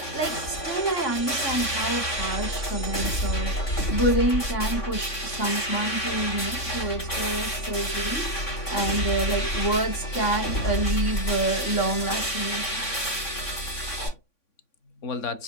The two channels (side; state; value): right; late; 3.5 ms